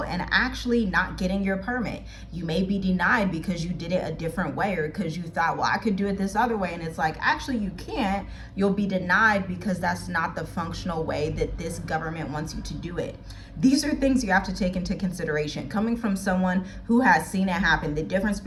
and actually not getting your permit. You may be denied because you did it a different way, or because you thought, well, I could do it this other way, and it's like, actually you can't. You'll be denied because that's not the functional way that this government wants you to do it. These are things you have to take into consideration. Coming from someone who has seen it happen, the difference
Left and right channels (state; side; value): identical; both; correlation 1.00